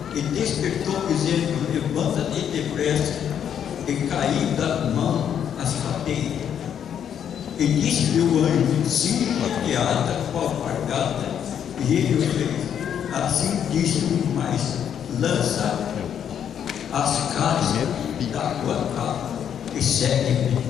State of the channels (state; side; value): quieter; right; 8.8 dB